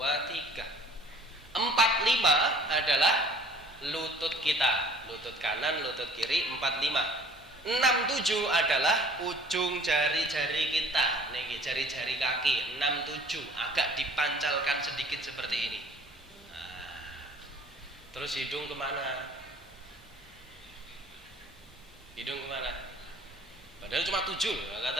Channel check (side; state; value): both; normal; correlation 0.52